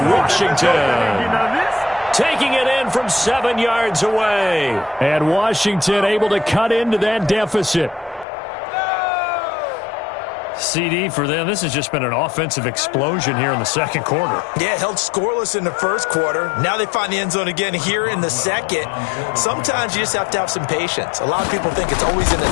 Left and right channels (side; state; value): right; drops out; at 8.2 s